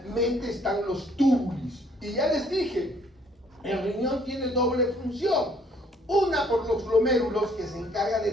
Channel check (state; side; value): normal; both; correlation 0.62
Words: están los túbulos. Y ya les dije, el riñón tiene doble función. Una por los glomérulos, que se encarga